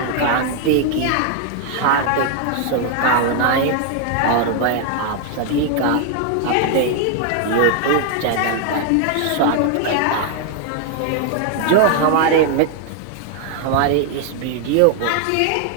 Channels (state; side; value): different; both; correlation 0.00